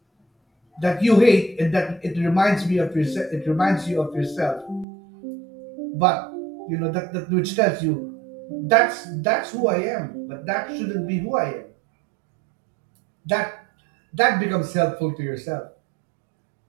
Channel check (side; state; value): left; drops out; at 4.9 s